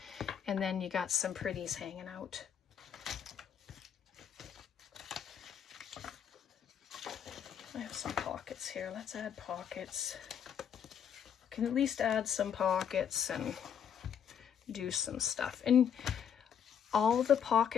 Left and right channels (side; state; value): right; quieter; 8.1 dB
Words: And then you got some pretties hanging out. I have some pockets here. Let's add pockets. Can at least add some pockets and do some stuff. And all the